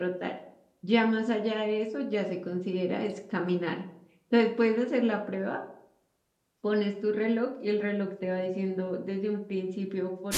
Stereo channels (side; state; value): both; identical; correlation 1.00